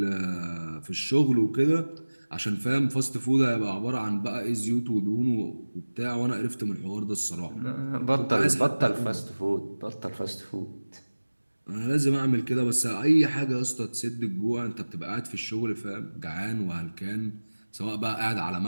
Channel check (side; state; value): both; inverted; correlation -1.00